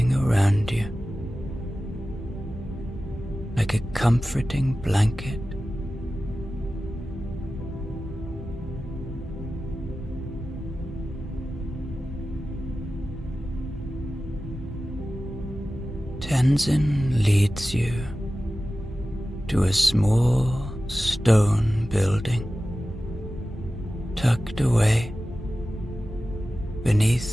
around you like a comforting blanket. Tenzin leads you to a small stone building tucked away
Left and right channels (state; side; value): normal; both; correlation 0.95